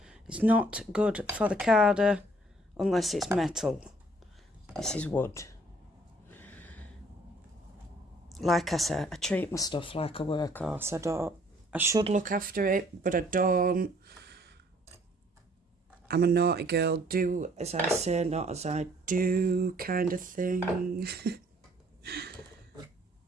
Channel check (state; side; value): normal; both; correlation 0.60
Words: It's not good for the carder unless it's metal. This is wood. Like I said, I treat my stuff like a workhorse. I should look after it, but I don't. I'm a naughty girl, do as I say, not as I do kind of thing.